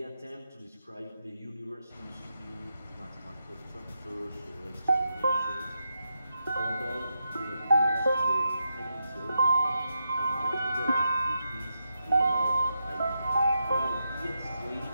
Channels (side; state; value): both; inverted; correlation -0.86